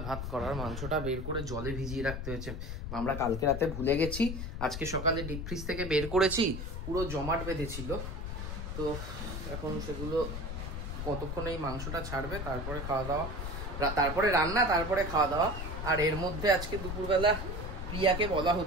ভাত করার। মাংসটা বের করে জলে ভিজিয়ে রাখতে হয়েছে, আমরা কালকে রাতে ভুলে গেছি। আজকে সকালে ডিপ ফ্রিজ থেকে বের করেছি, পুরো জমাট বেঁধেছিল। তো এখন সেগুলো কতক্ষণ এই মাংসটা ছাড়বে, তারপরে খাওয়া দাওয়া, তারপরে রান্না, তারপরে খাওয়া দাওয়া। আর এর মধ্যে আজকে দুপুরবেলা প্রিয়াকে বলা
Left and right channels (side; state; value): left; noise; rumble, 5 dB below the sound